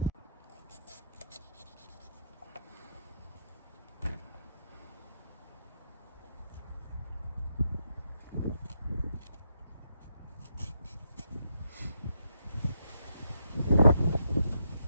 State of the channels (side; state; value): both; inverted; correlation -0.78